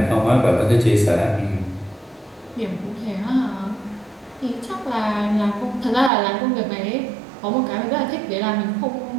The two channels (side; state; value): left; drops out; at 6.1 s